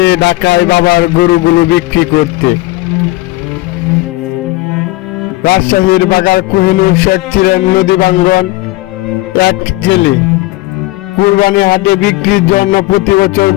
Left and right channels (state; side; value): quieter; right; 20.1 dB